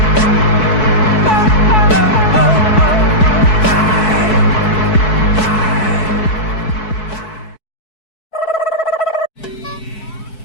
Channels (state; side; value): late; right; 4.6 ms